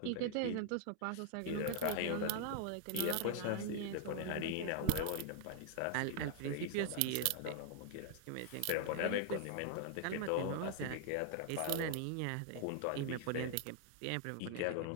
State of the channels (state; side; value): different; both; correlation 0.00